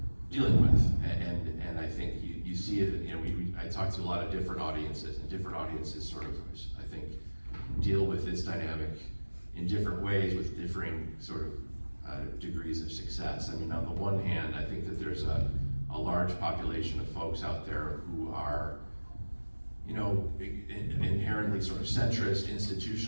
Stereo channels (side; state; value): both; inverted; correlation -1.00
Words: dealing with. And I think you see it. I talk to a lot of different audiences, and different audiences sort of, I think, deal with this dynamic in different ways with differing sort of degrees of success. I mean, on the one hand, I think that there's a large population of folks out there who are, inherently sort of centrist,